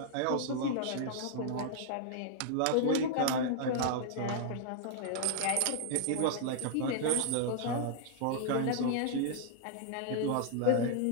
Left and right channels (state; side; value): different; both; correlation 0.00